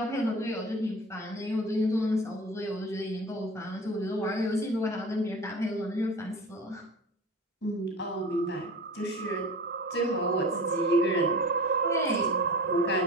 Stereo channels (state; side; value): normal; both; correlation 0.35